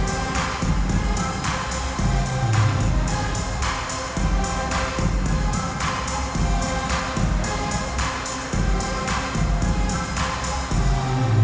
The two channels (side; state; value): both; identical; correlation 1.00